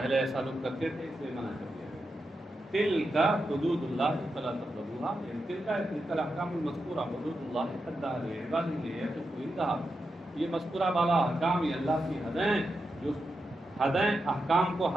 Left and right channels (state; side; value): normal; both; correlation 0.88